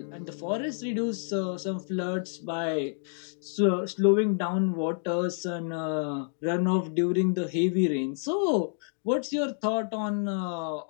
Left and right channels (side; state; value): right; silent; digital silence